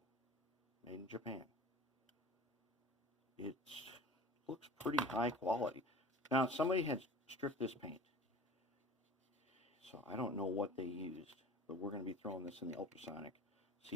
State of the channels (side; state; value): both; normal; correlation 0.41